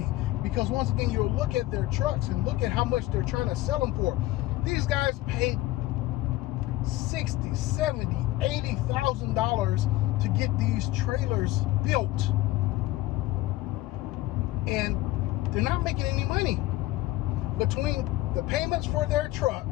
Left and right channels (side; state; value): right; quieter; 17.2 dB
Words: because once again, you'll look at their trucks and look at how much they're trying to sell them for. These guys paid $60,000, $70,000, $80,000 to get these trailers built, and they're not making any money. Between the payments for their truck,